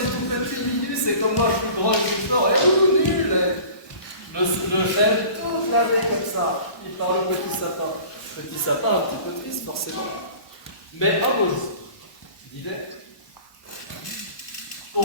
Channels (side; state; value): right; late; 1.2 ms